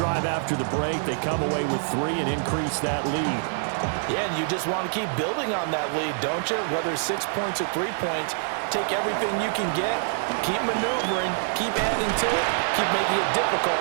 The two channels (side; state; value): left; silent; 61 dB below the other